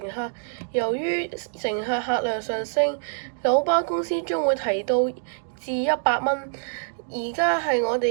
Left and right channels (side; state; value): left; silent; digital silence